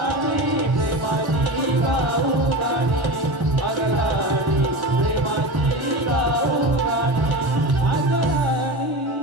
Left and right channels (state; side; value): late; left; 1.0 ms